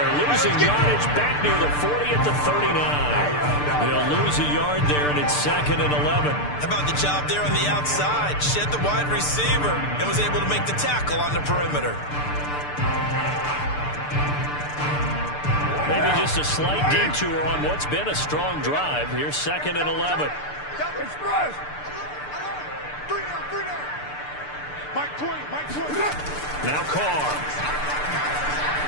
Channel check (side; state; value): right; late; 6.8 ms